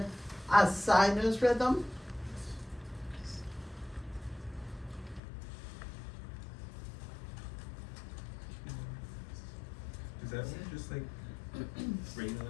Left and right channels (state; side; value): drops out; right; at 5.2 s